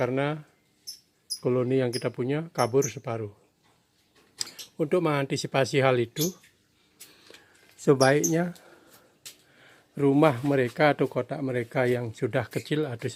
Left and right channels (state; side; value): identical; both; correlation 1.00